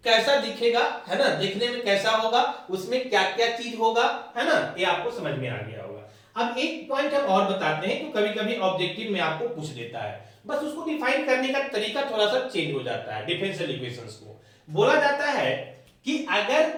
कैसा दिखेगा, है ना, देखने में कैसा होगा, उसमें क्या क्या चीज होगा, है ना, ये आपको समझ में आ गया होगा। अब एक पॉइंट हम और बताते हैं, तो कभी कभी ऑब्जेक्टिव में आपको पूछ देता है, बस उसको डिफाइन करने का तरीका थोड़ा सा चेंज हो जाता है। डिफरेंशियल इक्वेशंस को बोला जाता है कि अगर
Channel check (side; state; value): both; identical; correlation 1.00